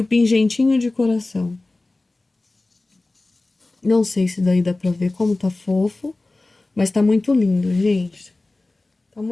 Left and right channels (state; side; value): quieter; right; 3.0 dB